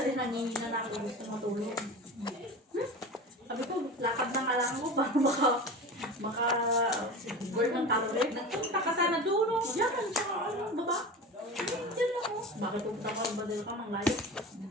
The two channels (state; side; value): normal; both; correlation 0.31